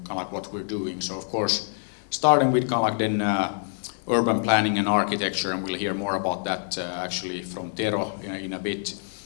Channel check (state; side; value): silent; right; digital silence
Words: kind of like what we're doing. So of course, starting with kind of like then urban planning and architecture, and we'll hear more about that actually from Tero in a bit.